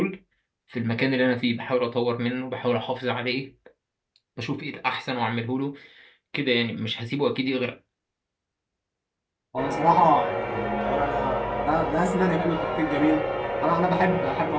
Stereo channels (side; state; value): both; identical; correlation 1.00